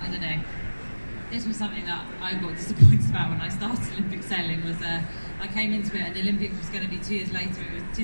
I don't know, this was something that I got disappointed about when I started Olympic sailing, was I came into it and the Olympics was going to be 2 years later. It was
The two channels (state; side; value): inverted; both; correlation -1.00